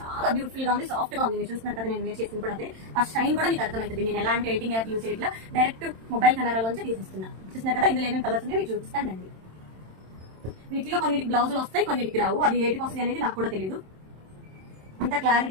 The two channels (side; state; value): left; late; 27 ms